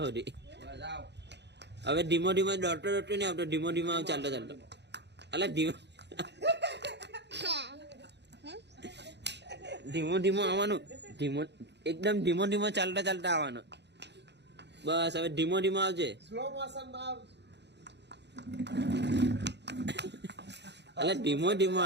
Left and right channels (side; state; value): left; late; 0.50 ms